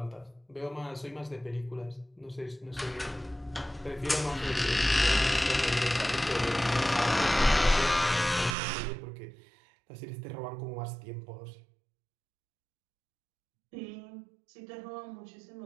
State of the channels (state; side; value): drops out; left; at 8.6 s